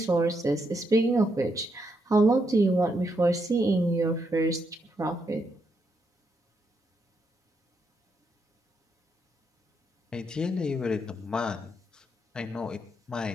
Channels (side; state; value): both; normal; correlation 0.79